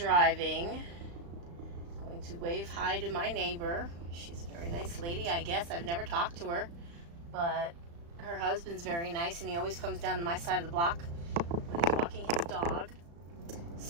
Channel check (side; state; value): left; late; 35 ms